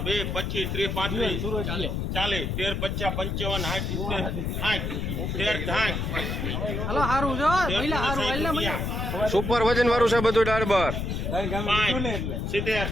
25 30 35 40 13 50 55 સુપર વજન વાળું છે બધું દાળ બાર 70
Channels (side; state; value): left; noise; rumble, 2 dB below the sound